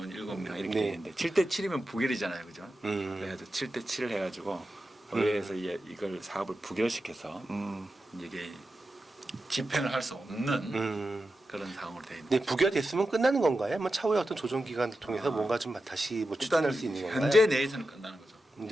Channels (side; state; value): both; normal; correlation 0.91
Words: 7명 이렇게 네. 돼 있는데 7대 7이면 부결이잖아요, 그죠? 그래가지고 7대 7을 해가지고 의회에서 이걸 사업을 부결시켜서 이게 집행을 할 수 없는 그런 상황으로 되어 있는. 네, 부결됐으면 끝나는 건가요? 뭐 차후에 어떤 조정 기관을 통해서 뭔가 좀 다시 뭐 추진할 수 있는 건가요? 현재 내에서는 끝나는 거죠.